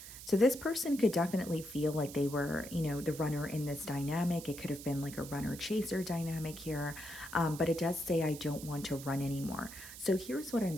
So this person could definitely feel like they were, the runner in this dynamic. It could have been like a runner-chaser dynamic here, but it does say, I don't want to run anymore. So here's what I'm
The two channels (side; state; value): right; noise; hiss, 13 dB below the sound